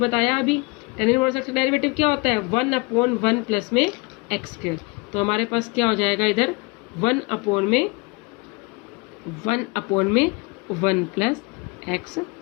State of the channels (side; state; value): right; quieter; 27.8 dB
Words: अभी. टेन इनवर्स x का डेरिवेटिव क्या होता है? 1 अपॉन 1 प्लस में एक्स स्क्वायर. तो हमारे पास क्या हो जाएगा इधर? 1 अपॉन में 1 प्लस एक्स